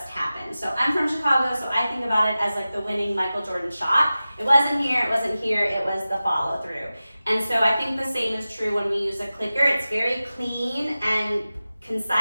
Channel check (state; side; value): inverted; both; correlation -0.95